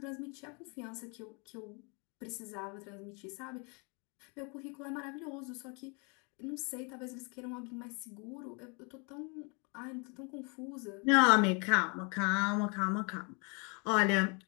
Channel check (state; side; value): quieter; right; 33.5 dB